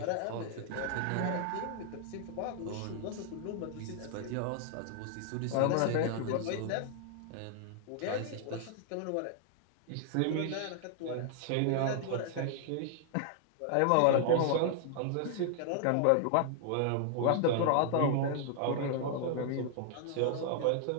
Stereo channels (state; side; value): different; both; correlation 0.00